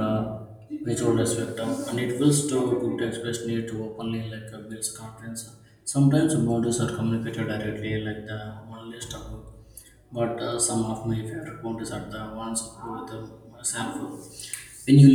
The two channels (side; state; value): both; identical; correlation 1.00